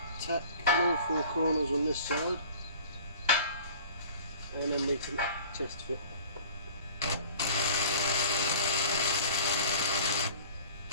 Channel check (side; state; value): both; inverted; correlation -0.45